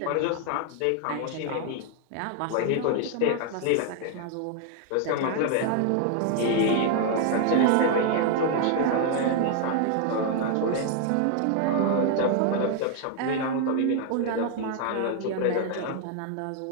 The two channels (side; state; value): both; different; correlation 0.00